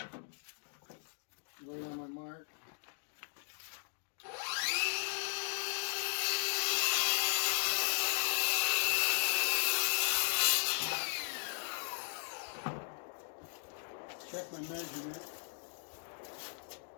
Right on my mark. Check my measurement.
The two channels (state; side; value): silent; right; digital silence